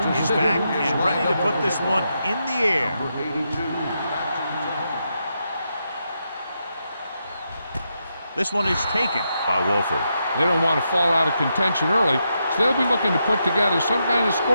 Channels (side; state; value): both; inverted; correlation -0.83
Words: is back and ready to put this one in the air. Number 82. This one is taken by Wolford. They don't want to fall out of contention early, so they'll be looking to put together some kind of